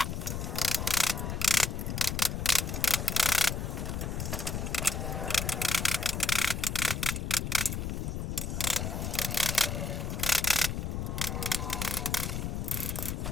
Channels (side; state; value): left; noise; rumble, 3 dB below the sound